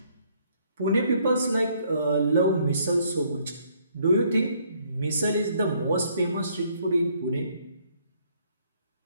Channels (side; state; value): both; inverted; correlation -0.66